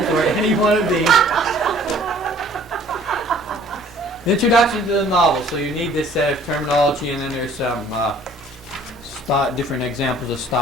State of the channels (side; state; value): both; normal; correlation 0.54